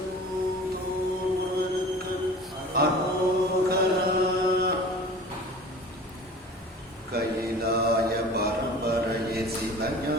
அரோகரா. கைலாய பரம்பரையே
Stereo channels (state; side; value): normal; both; correlation 0.41